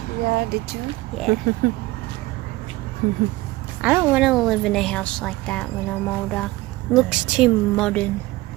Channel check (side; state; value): left; quieter; 19.1 dB